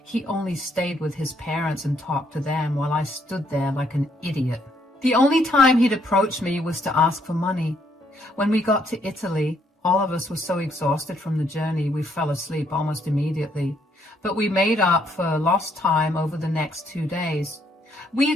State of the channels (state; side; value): normal; both; correlation 0.70